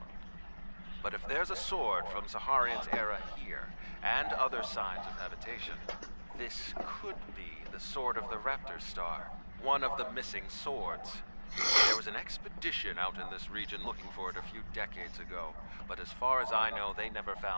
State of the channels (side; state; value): both; inverted; correlation -1.00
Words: But if there's a sword from Saharian's era here, and other signs of habitation, this could be the sword of the Raptor Star, one of the missing swords. There was an expedition out in this region looking for it a few decades ago, but as far as I know, they never